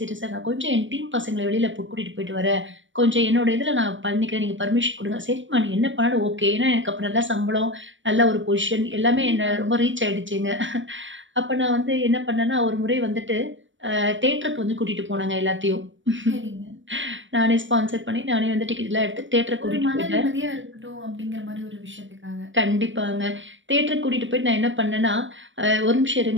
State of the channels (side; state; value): left; late; 0.56 ms